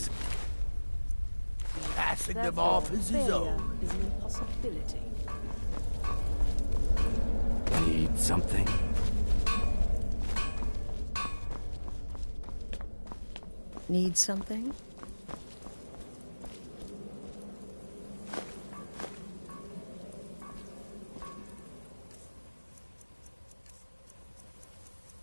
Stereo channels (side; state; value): both; inverted; correlation -1.00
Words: passing them off as his own. Is an impossibility. Need something? Need something?